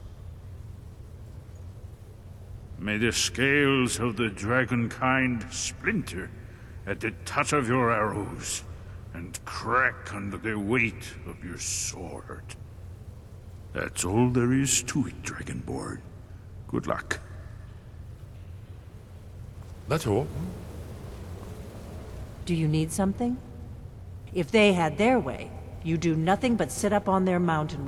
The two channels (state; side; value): identical; both; correlation 1.00